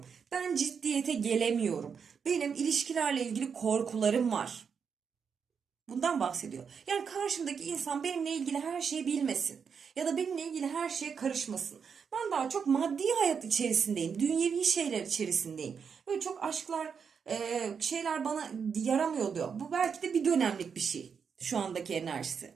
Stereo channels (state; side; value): quieter; left; 6.4 dB